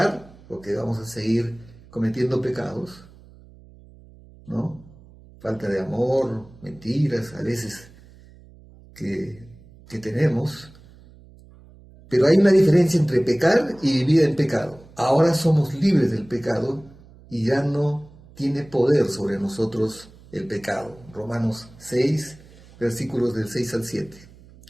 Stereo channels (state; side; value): noise; right; hum, 23 dB below the sound